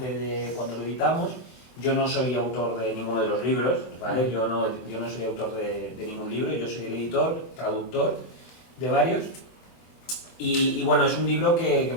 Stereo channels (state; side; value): late; right; 24 ms